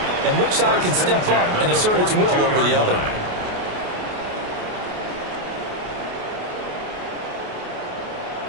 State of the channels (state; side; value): late; left; 28 ms